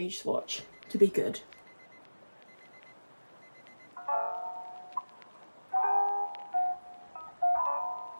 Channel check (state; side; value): inverted; both; correlation -1.00